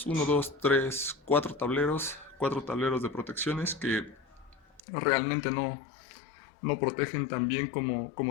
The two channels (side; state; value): right; drops out; at 4.8 s